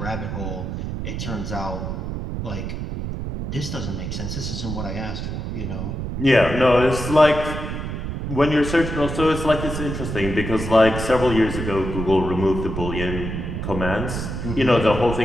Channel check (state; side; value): noise; right; rumble, 5 dB below the sound